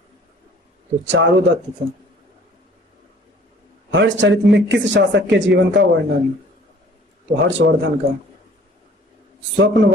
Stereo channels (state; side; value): normal; both; correlation 0.53